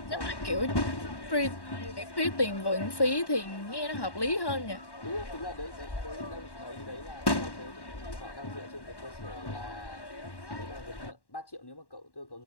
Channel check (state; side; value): late; right; 1.1 ms